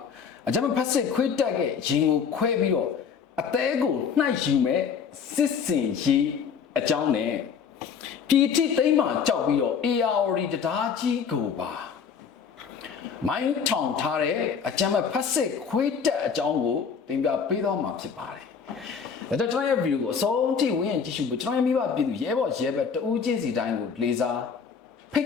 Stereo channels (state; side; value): quieter; right; 6.6 dB